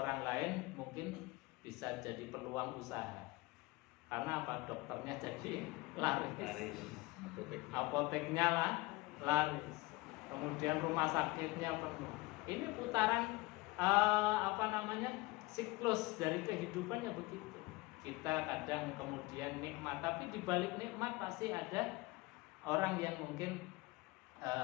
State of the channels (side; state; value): right; quieter; 22.5 dB